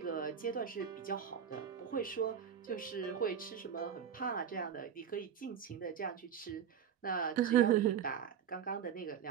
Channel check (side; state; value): left; quieter; 8.2 dB